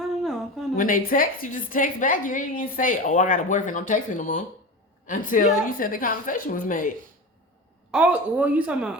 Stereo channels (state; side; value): normal; both; correlation 0.28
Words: know. I'm kind of When they text, you just text back. You ain't even say, oh, I got a boyfriend. I'm texting no more. Until you said the conversation was made. oh well, you talking